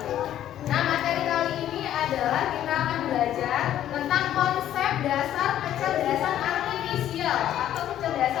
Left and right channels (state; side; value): quieter; right; 11.6 dB